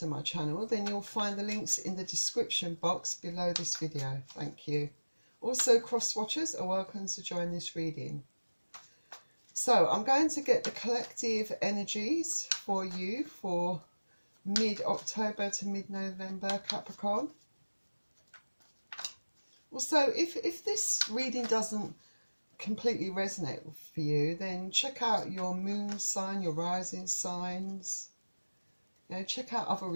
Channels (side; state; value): both; inverted; correlation -1.00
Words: my channel, then you'll find the links in the description box below this video. Thank you. Also, cross-watchers are welcome to join this reading. So I'm going to get the collective energies for you for mid-October to mid-November, Capricorn. Also, if this reading doesn't completely resonate for you, then check out your moon sign, your rising signs. You know, check out other